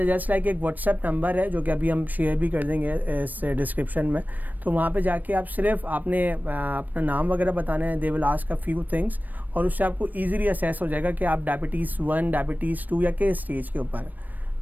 लाइक एक व्हाट्सएप नंबर है, जो कि अभी हम शेयर भी कर देंगे इस डिस्क्रिप्शन में। तो वहाँ पे जाके आप सिर्फ आपने अपना नाम वगैरह बताना है, they will ask a few things, और उससे आपको ईजिली असेस हो जाएगा कि आप डायबिटीज़ 1, डायबिटीज़ 2 या किस स्टेज के ऊपर।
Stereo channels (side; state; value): left; late; 0.085 ms